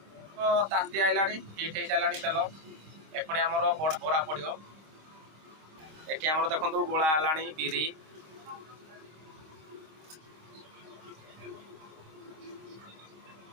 तो ताती आइला हिट हो सारा तेल एपणे आमर बोरा पड़ो एटी आमर देखो गोला है बिरी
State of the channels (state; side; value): late; left; 25 ms